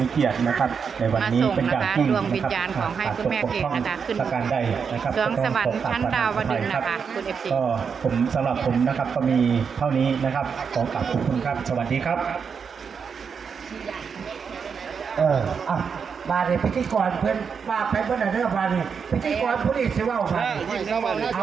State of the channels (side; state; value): left; quieter; 6.2 dB